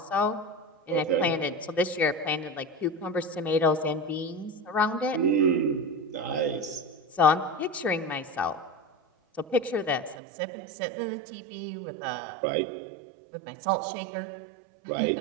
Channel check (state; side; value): drops out; left; at 10.2 s